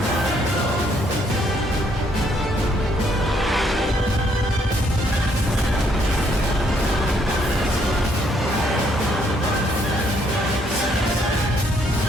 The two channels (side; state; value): both; normal; correlation 0.70